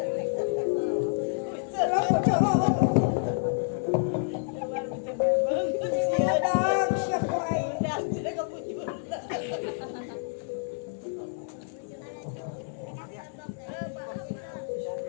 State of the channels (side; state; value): right; silent; digital silence